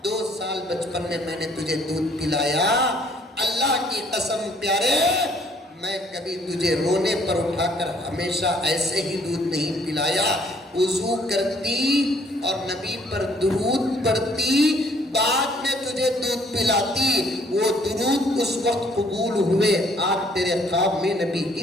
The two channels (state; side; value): normal; both; correlation 0.62